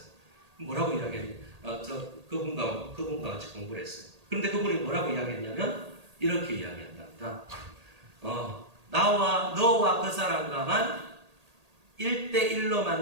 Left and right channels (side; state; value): left; late; 1.8 ms